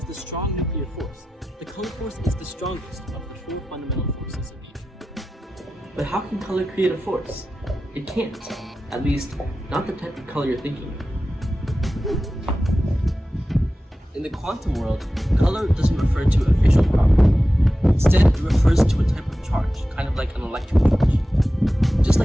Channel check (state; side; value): normal; both; correlation 0.93